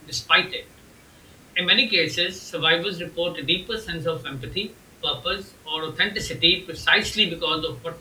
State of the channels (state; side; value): identical; both; correlation 1.00